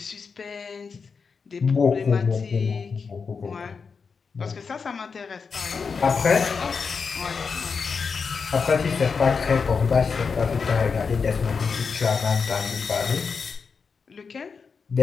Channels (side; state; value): right; quieter; 5.4 dB